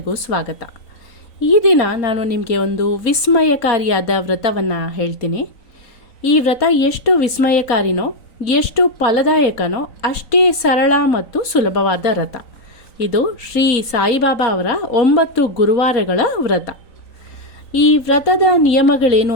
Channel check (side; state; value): right; late; 3.9 ms